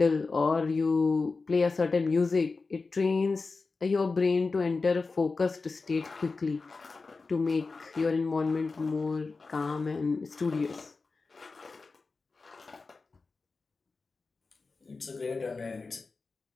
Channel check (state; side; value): quieter; right; 4.1 dB